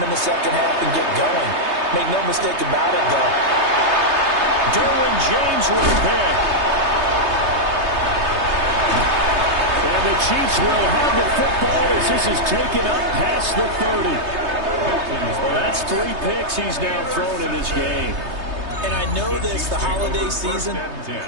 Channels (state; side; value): late; left; 3.3 ms